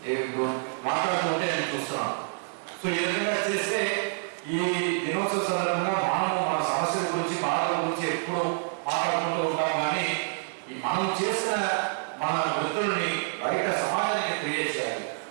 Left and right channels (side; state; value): left; silent; digital silence